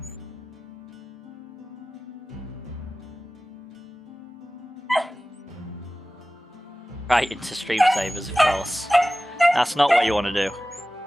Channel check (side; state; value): both; normal; correlation 0.96